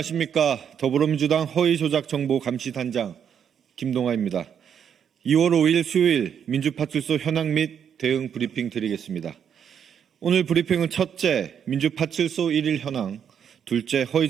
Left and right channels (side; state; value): left; quieter; 8.1 dB